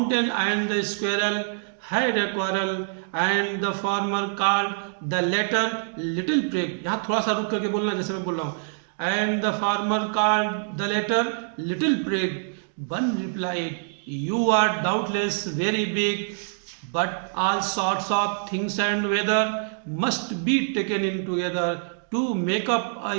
and the squirrel had a quarrel and the former called the latter little prig, यहाँ थोड़ा सा रुक करके बोलना जैसे मैं बोल रहा हूँ। And the former called the latter little prig, one replied, you are doubtless very big, but all sorts of things and weather must be taken in together to make up a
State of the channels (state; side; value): silent; left; digital silence